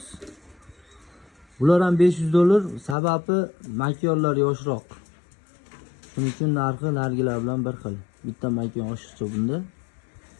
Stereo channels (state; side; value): drops out; right; at 3.0 s